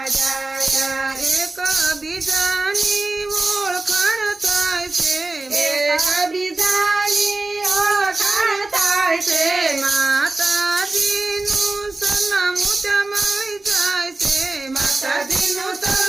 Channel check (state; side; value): quieter; left; 3.1 dB